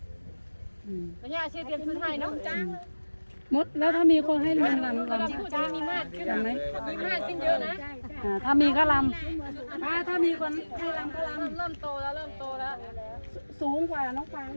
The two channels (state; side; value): inverted; both; correlation -1.00